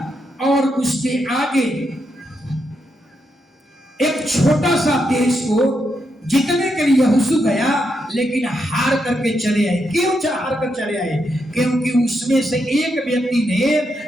और उसके आगे एक छोटा सा देश को जीतने के लिए यहोशू गया, लेकिन हार करके चले आए। क्यों हार कर चले आए? क्योंकि उसमें से एक व्यक्ति ने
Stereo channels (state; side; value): normal; both; correlation 0.82